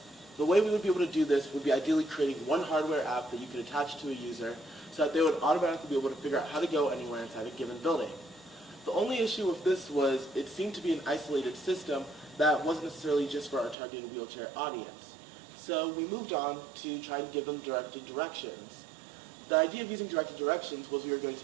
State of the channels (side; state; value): left; drops out; at 13.8 s